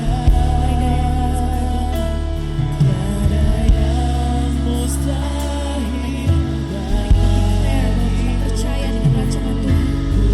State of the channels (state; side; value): identical; both; correlation 1.00